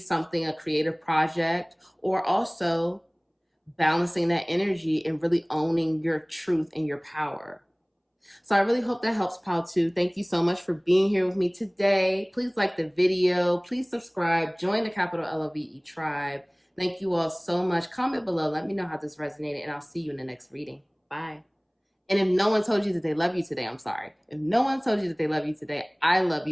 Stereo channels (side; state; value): both; identical; correlation 1.00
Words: a creative project, or also balancing that energy and really owning your truth and your power. So I really hope that helps, Pal 2. Thank you so much for being here with me today. Please like the video. Please subscribe. Join the capital LOVE tribe. Thank you all so much. Comment below. Let me know how this resonated, and I'll see you in the next reading. Bye. And if no one told you that they love you today, I'm sorry. If no one told you that they love you today, I love